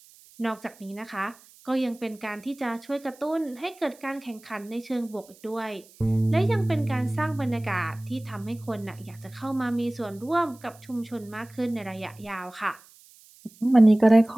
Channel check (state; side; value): noise; right; hiss, 25 dB below the sound